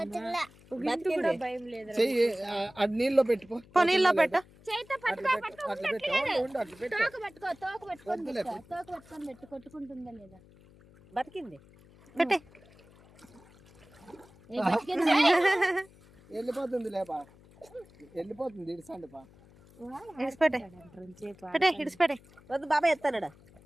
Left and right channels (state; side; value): noise; left; hum, 25 dB below the sound